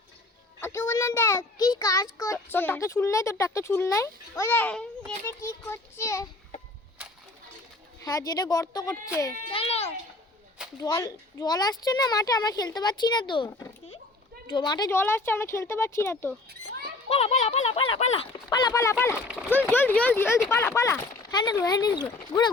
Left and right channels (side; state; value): right; quieter; 3.1 dB